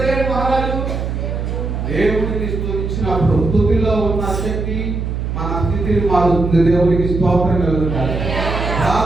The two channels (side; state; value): right; noise; hum, 3 dB below the sound